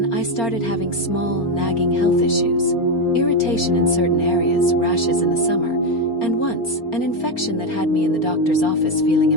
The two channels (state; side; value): late; right; 4.3 ms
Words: I started having small, nagging health issues, irritation in certain areas, rashes in the summer, and once, an infection that had me in the doctor's office feeling